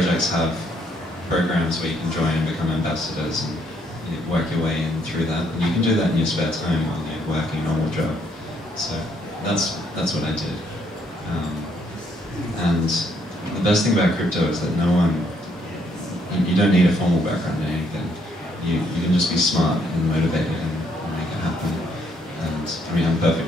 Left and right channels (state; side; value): normal; both; correlation 0.70